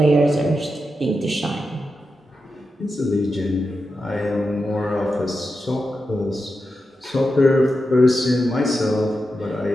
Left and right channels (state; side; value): normal; both; correlation 0.89